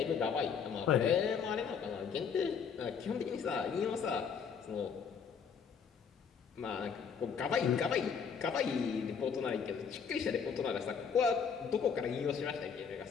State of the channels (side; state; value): right; quieter; 6.6 dB